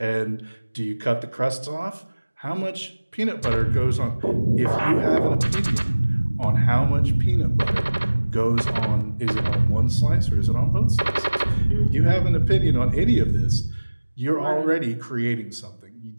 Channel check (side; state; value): both; inverted; correlation -1.00